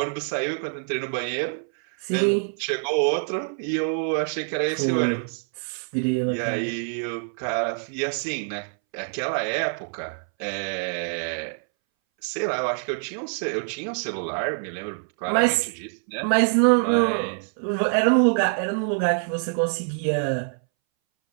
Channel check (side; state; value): left; silent; 62 dB below the other